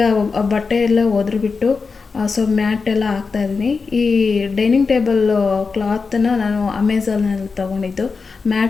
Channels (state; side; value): quieter; right; 4.7 dB